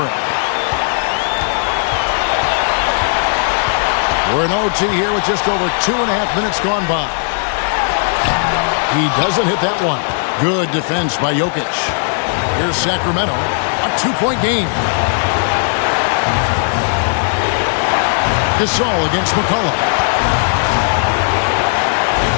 We're in OT here with just over 2.5 minutes gone by. He doesn't hit that one. Good defense by Jokic. Here's Sacramento. A 2-point game. Gasol against McCollum.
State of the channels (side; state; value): right; silent; digital silence